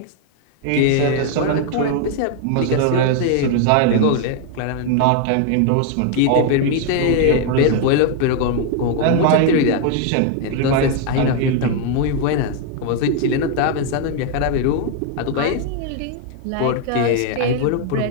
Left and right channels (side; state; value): both; different; correlation 0.00